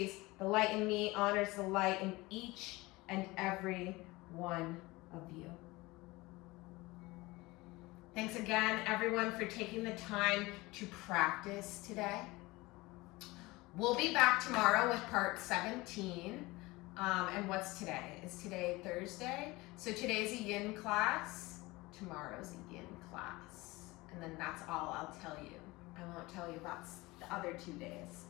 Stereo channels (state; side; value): quieter; right; 21.6 dB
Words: the light in me honors the light in each and every one of you. Thanks again, everyone, for taking the time to practice today. We'll be back tomorrow with part 17. And what's today? Is today Thursday? So today's a yin class, tomorrow's a yin class. And then that's all I'll tell you. I won't tell you about the other 2 days.